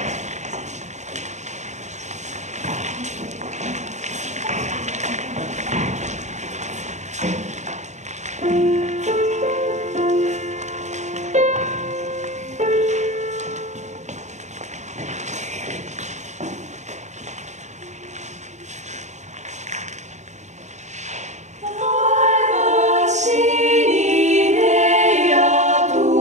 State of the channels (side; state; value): left; late; 0.34 ms